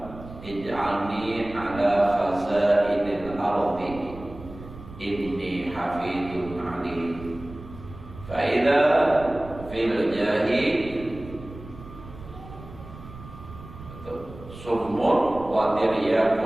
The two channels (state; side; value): noise; right; rumble, 15 dB below the sound